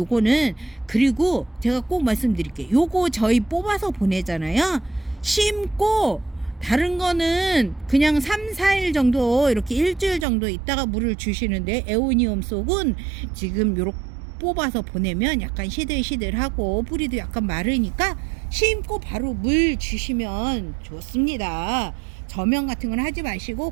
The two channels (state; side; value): drops out; left; at 10.2 s